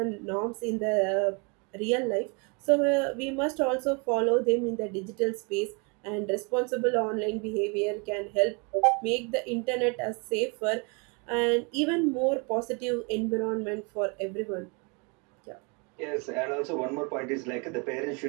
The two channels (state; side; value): quieter; left; 32.0 dB